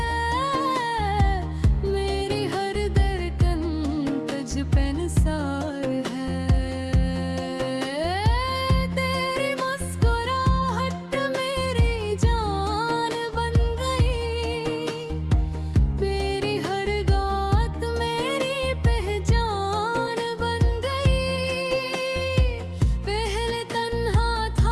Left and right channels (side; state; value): both; identical; correlation 1.00